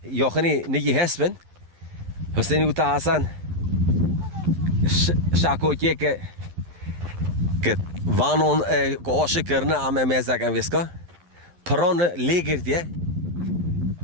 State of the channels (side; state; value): left; late; 11 ms